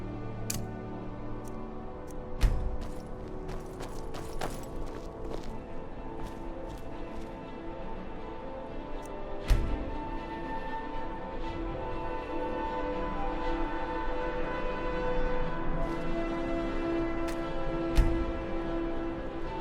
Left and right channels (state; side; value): identical; both; correlation 1.00